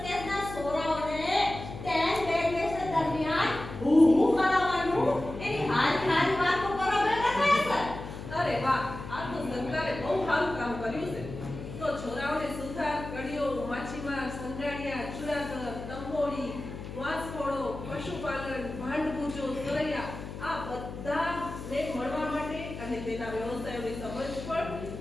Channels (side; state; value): left; noise; hum, 10 dB below the sound